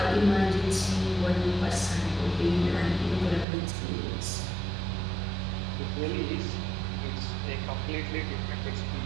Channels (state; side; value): drops out; left; at 3.5 s